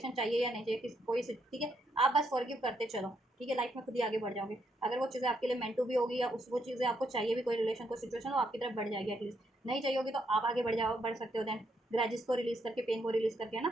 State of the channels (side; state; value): both; normal; correlation 0.76